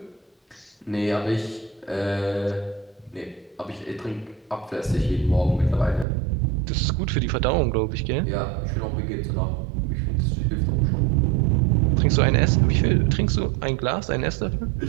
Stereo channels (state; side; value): drops out; left; at 6.1 s